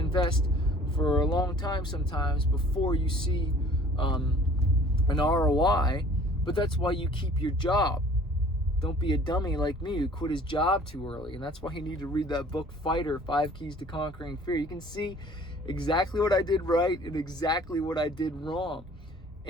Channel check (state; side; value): normal; both; correlation 0.52